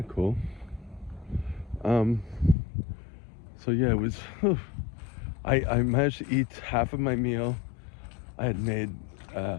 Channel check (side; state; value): right; drops out; at 2.6 s